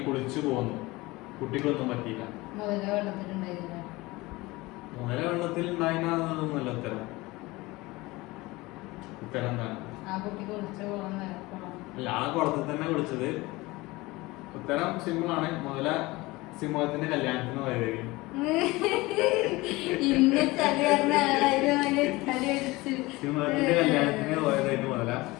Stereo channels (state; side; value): quieter; right; 21.3 dB